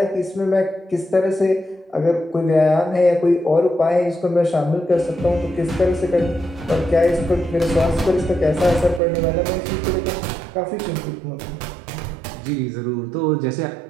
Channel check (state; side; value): drops out; left; at 9.0 s